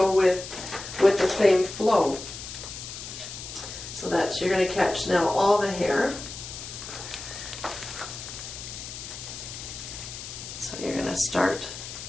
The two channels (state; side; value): noise; left; hiss, 10 dB below the sound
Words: with the same flow. So that you're going to catch now all the hair. So you're going to start